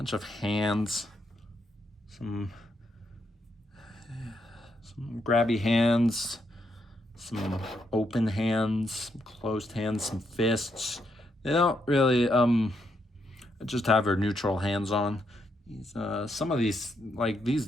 of hands, some grabby hands, some open hands, some closed hands, some fists. They don't really just have her neutral hands on. Some of these, like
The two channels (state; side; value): normal; both; correlation 0.78